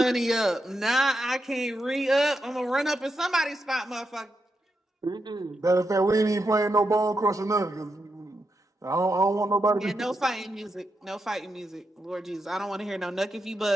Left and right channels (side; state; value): both; normal; correlation 0.85